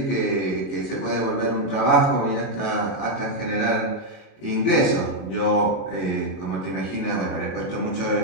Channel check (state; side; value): late; right; 23 ms